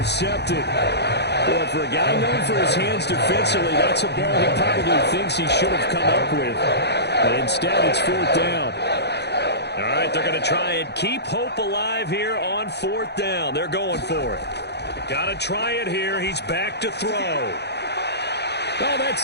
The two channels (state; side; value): late; right; 0.49 ms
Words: Well, for a guy known for his hands defensively, that's a ball he probably thinks he should have come up with. But instead, it's fourth down. All right, they're going to try and keep hope alive here on fourth down. They're going for it. Got to try it here. He's back to throw. Oh,